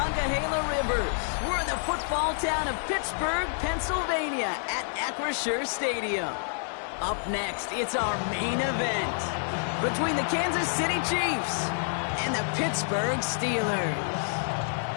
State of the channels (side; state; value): right; silent; digital silence